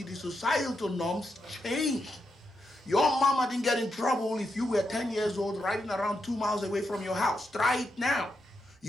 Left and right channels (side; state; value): both; normal; correlation 0.84